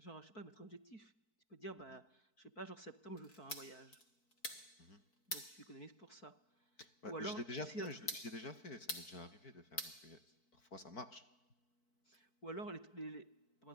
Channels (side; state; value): right; late; 4.6 ms